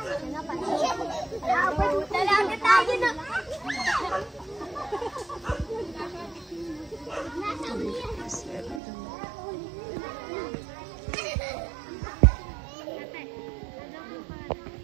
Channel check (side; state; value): left; drops out; at 8.8 s